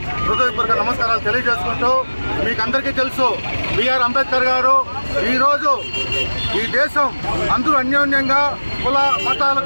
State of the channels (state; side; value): inverted; both; correlation -1.00